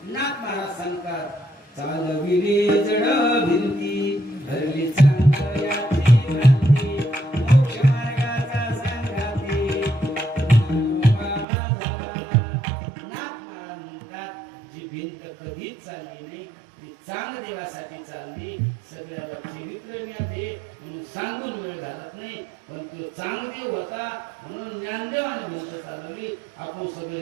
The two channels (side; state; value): left; drops out; at 11.5 s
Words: नाथ महाराज सांगतात चालविली जड भिंती भरली चांगल्याची क्रांती मोक्ष मार्गाचा संघाती नाथ महाराज म्हणतात जी भिंत कधीच चालली नाही ती चांग देवासाठी चालली सगळ्याला चरित्रज्ञात आहे म्हणून सांगून वेळ घालत नाही पण तो चांगदेव होता म्हणून ज्ञानदेवाने भिंत चालवली आपण